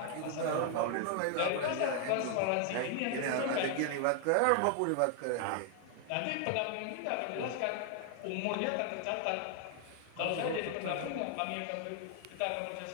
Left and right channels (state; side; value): different; both; correlation 0.00